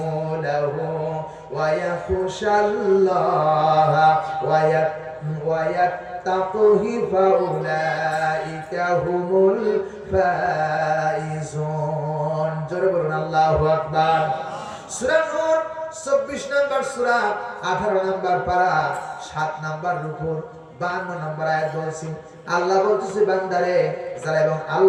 ওয়া ইয়াখশাল্লাহা ওয়া ইয়াত্তাকুহু ফাউলাইকা হুমুল ফাইজুন। জোরে বলুন আল্লাহু আকবার। সূরা নূর 24 নম্বর সূরা, 18 নম্বর পারা, 7 নম্বর রুকু, 52 নম্বর আয়াত বলছি। আল্লাহ বলতেছে বান্দারে যারা এবং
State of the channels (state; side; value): identical; both; correlation 1.00